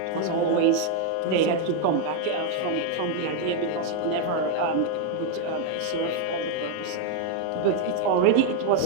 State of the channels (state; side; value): different; both; correlation 0.00